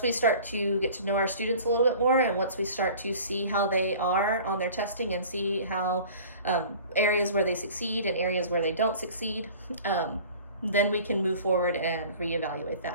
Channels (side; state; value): both; inverted; correlation -0.44